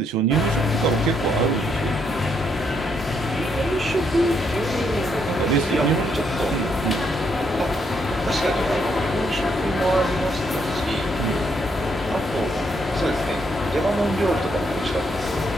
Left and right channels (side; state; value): both; normal; correlation 0.75